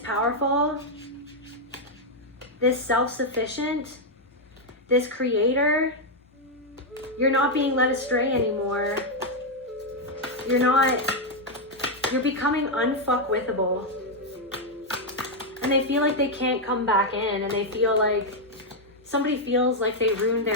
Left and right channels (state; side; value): normal; both; correlation 0.00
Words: powerful, this self-sufficient, this creator. You're not being led astray anymore. you're becoming unfuckwithable. And they feel like they can't come back in, and they feel like somebody feels like they ruined